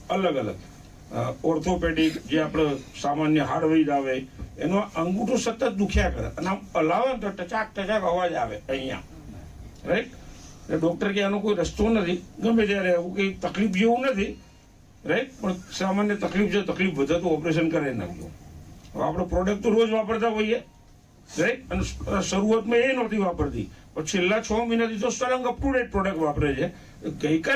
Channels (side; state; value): both; identical; correlation 1.00